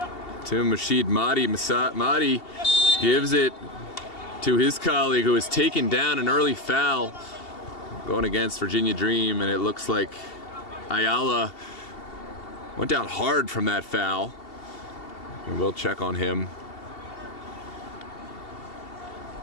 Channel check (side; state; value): right; late; 2.7 ms